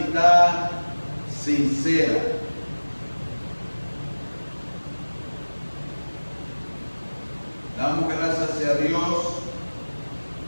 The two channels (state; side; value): inverted; both; correlation -1.00